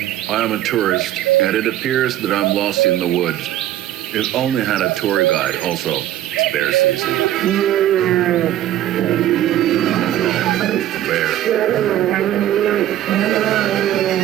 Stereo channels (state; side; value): quieter; left; 12.8 dB